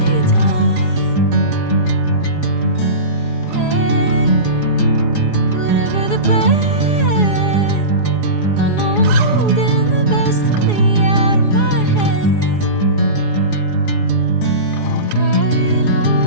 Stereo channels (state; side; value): late; right; 4.8 ms